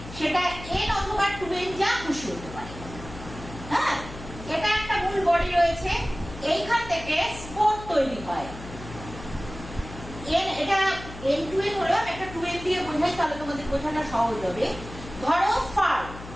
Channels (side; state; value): left; noise; hum, 13 dB below the sound